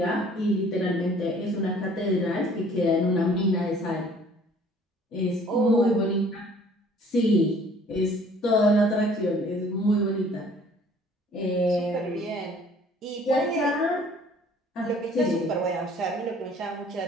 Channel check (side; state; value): both; normal; correlation 0.55